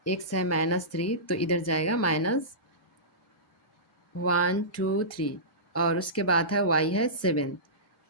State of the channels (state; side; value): normal; both; correlation -0.20